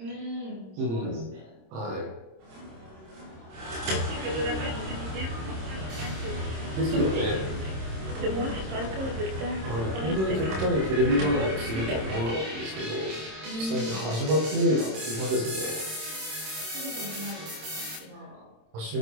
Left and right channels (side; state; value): left; late; 26 ms